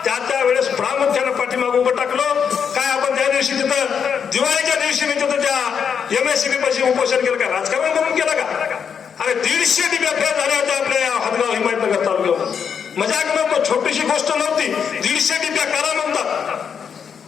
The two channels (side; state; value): right; quieter; 7.1 dB